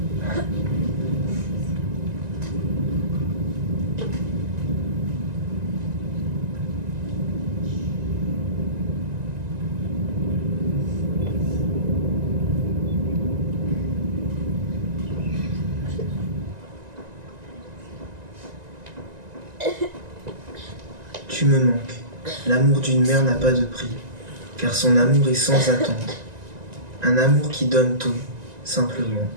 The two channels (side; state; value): left; late; 1.9 ms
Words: Tu me manques. L'amour d'une mère n'a pas de prix, car son amour est sans attente. Un amour qui donne tout, simplement.